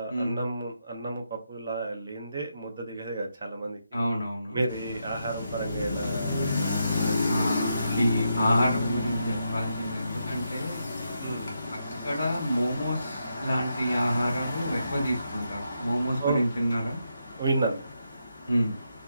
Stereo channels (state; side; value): inverted; both; correlation -0.82